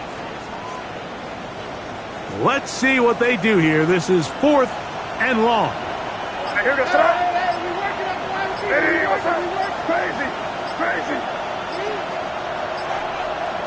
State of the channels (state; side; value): identical; both; correlation 1.00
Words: Let's see what they do here. This is 4th and long. Here to start. Hey, what's up? Crazy. Crazy.